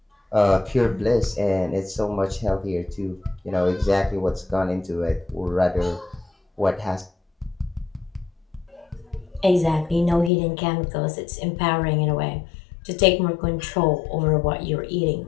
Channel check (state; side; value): drops out; right; at 10.3 s